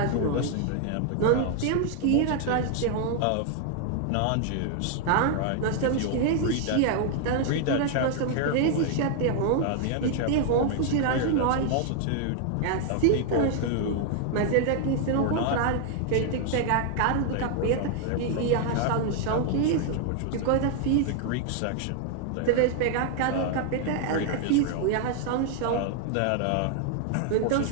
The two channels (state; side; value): different; both; correlation 0.00